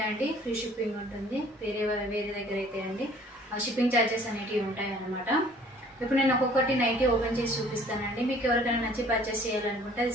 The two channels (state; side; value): normal; both; correlation 0.54